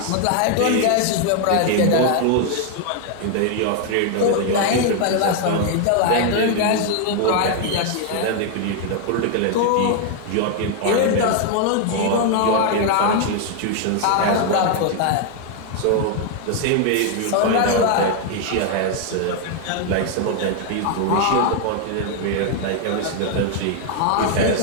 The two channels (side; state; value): both; different; correlation 0.00